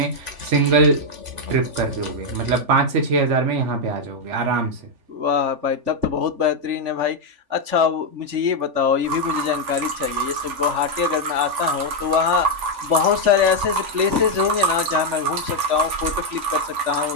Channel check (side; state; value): left; late; 3.4 ms